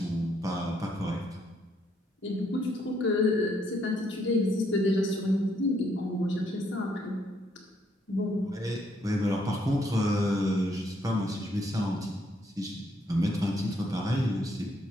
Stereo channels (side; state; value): both; normal; correlation 0.72